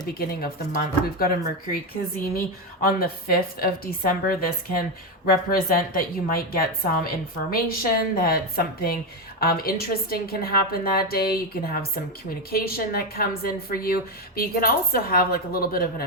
beginning of the month. We've got a Mercury Kazemi on the 5th of December. This can represent that you might get some information, that something interesting can happen that day. You can have some communication that comes in for you, but you can also have like a little bit of an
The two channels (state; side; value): normal; both; correlation 0.11